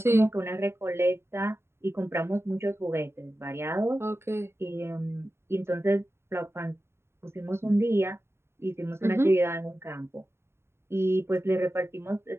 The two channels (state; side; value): late; left; 0.12 ms